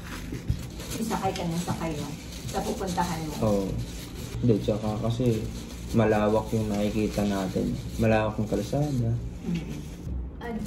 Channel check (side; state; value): both; identical; correlation 1.00